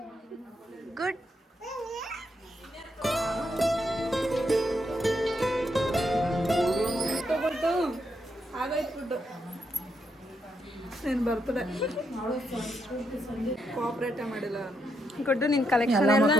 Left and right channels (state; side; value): normal; both; correlation 0.79